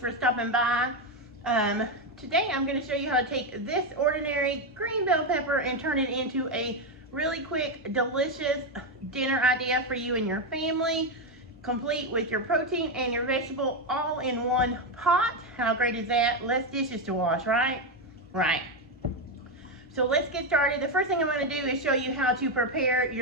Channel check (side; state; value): both; normal; correlation 0.07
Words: stopping by. Today I'm going to show you how to take this ordinary green bell pepper and turn it into a really quick, delicious dinner idea for you and your family, complete with your protein and your vegetable all in one pot. How great is that? Less dishes to wash, right? Right. So let's get started. The first thing I'm going to do is show you how to prepare